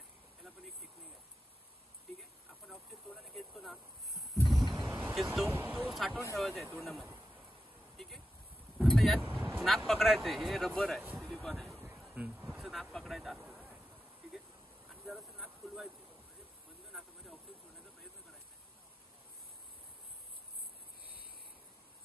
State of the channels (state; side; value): normal; both; correlation 0.90